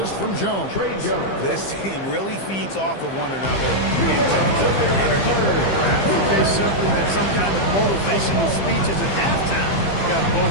from Jones. This team really feeds off of one another in terms of their energy. I think they simply that some kind of motivational speeches at halftime got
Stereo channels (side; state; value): right; late; 15 ms